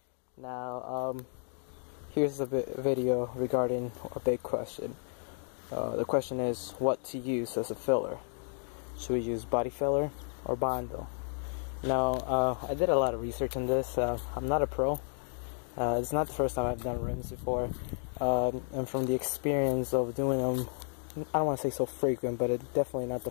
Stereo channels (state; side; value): silent; right; digital silence